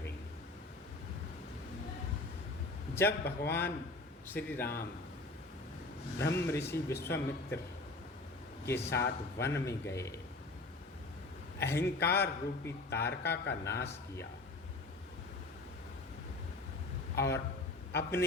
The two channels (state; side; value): quieter; right; 3.1 dB